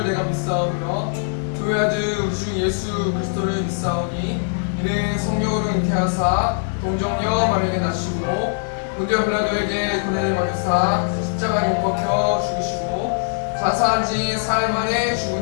내가 믿사오며 그 아들 우리 주 예수 그리스도를 믿사오니 이는 성령으로 잉태하사 동정녀 마리아에게 낳으시고 본디오 빌라도에게 고난을 받으사 십자가에 못 박혀 죽으시고 자사한 지 사흘 만에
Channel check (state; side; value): silent; right; digital silence